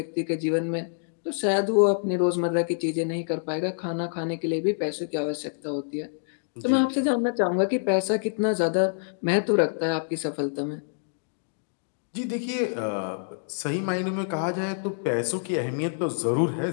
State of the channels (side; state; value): right; silent; digital silence